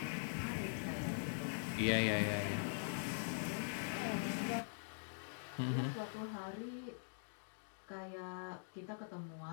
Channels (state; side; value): silent; right; digital silence